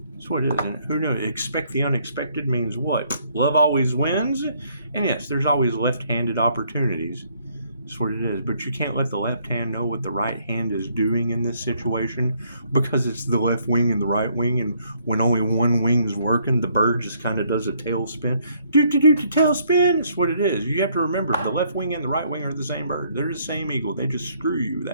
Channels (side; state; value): both; inverted; correlation -0.67